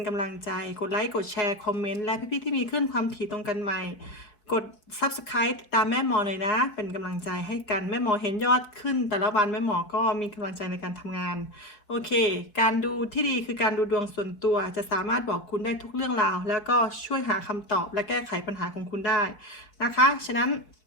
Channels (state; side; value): late; right; 4.9 ms